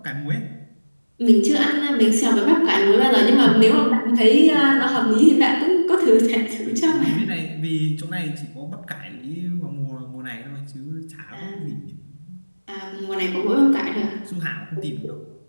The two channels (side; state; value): both; inverted; correlation -1.00